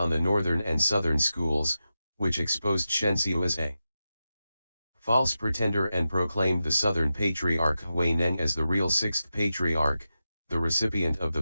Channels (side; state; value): both; inverted; correlation -0.91